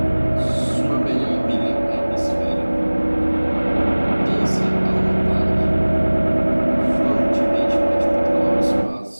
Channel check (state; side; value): inverted; both; correlation -1.00